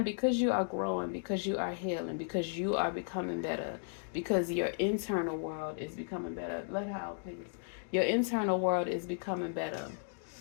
because you are growing, because you are healing, because you are becoming better, because your internal world is becoming better. Let her out, please. Your internal world is becoming better.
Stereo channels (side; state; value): right; silent; digital silence